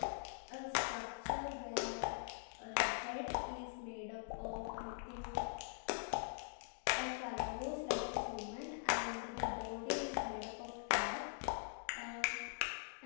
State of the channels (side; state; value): right; silent; digital silence